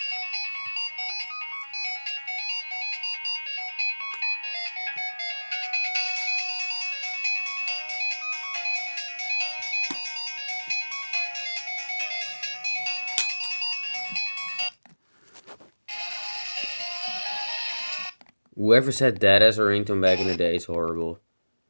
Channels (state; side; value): inverted; both; correlation -1.00